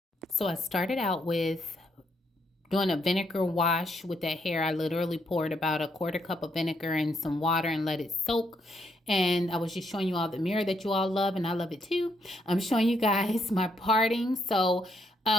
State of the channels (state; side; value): normal; both; correlation 0.75